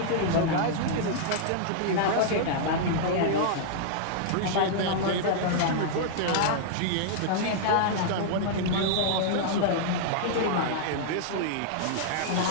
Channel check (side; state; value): both; different; correlation -0.01